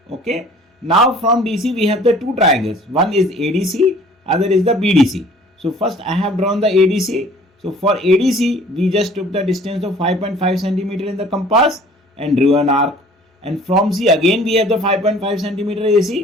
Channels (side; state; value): both; normal; correlation 0.51